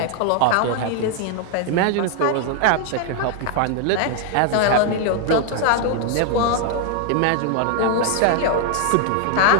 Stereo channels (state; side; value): different; both; correlation 0.00